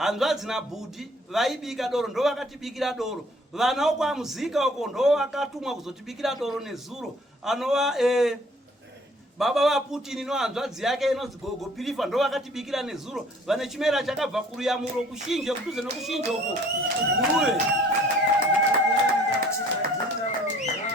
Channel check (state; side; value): normal; both; correlation 0.56